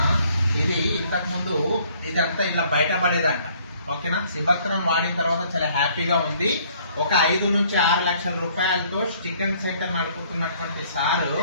ఇది ఇంతకుముందు ఇదంతా ఇట్లా బయటపడేదంట, ఓకేనా. సిబత్రాన్ వాడిన తర్వాత చాలా హ్యాపీగా ఉంది. ఒక 5 నుంచి 6 లక్షల రూపాయలతో చికెన్ సెంటర్ నడుపుతున్నటువంటి సారు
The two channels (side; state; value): both; inverted; correlation -0.61